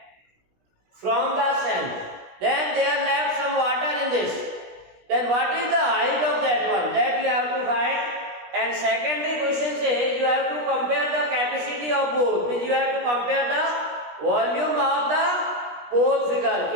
from the sand, then there left some water in this. Then what is the height of that one? That you have to find. And secondly question says you have to compare the capacity of both. Means you have to compare the volume of the both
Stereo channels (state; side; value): late; left; 16 ms